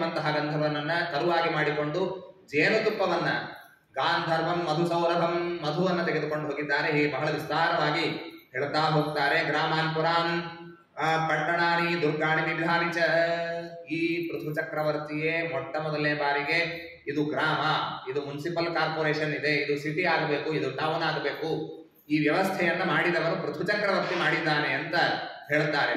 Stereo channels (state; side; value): identical; both; correlation 1.00